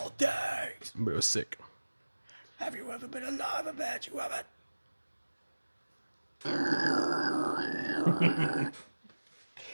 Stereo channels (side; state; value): both; inverted; correlation -1.00